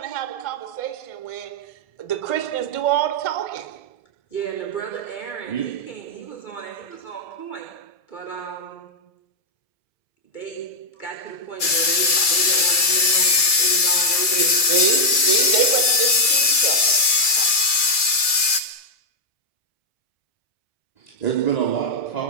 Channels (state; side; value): late; right; 2.3 ms